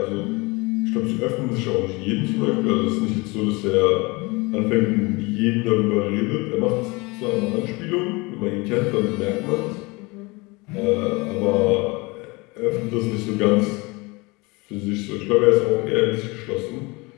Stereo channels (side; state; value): right; quieter; 25.5 dB